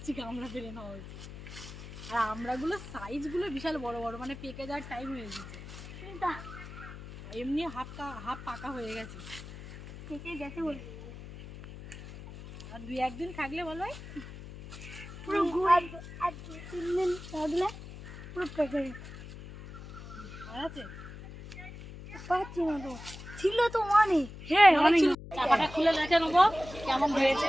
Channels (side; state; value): left; noise; hum, 13 dB below the sound